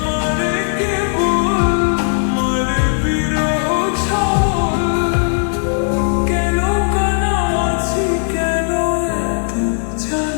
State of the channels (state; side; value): silent; right; 59 dB below the other